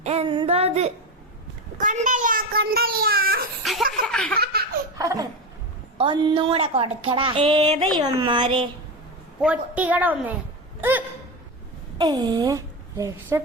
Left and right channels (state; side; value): normal; both; correlation 0.19